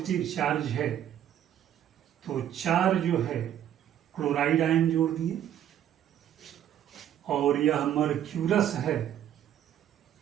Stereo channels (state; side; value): quieter; left; 10.7 dB